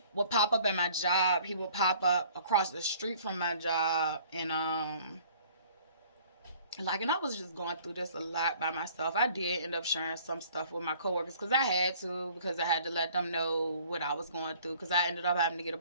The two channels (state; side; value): inverted; both; correlation -0.53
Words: would pop up at my job, he would pop up across the street from my job, and and I was just going through this a lot by myself. I did end up sharing some stuff with my coworkers because I had to let them know what I was going through, because I ended up having to get a